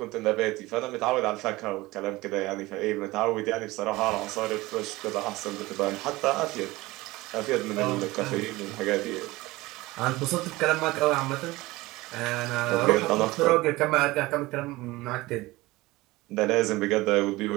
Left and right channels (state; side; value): quieter; left; 20.1 dB